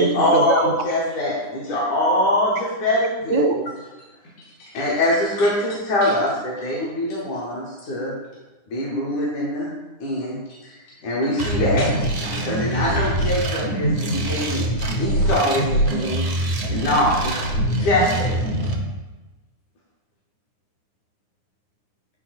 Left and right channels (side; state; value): right; late; 9.7 ms